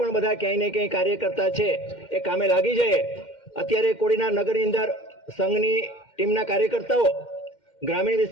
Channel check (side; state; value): right; late; 2.1 ms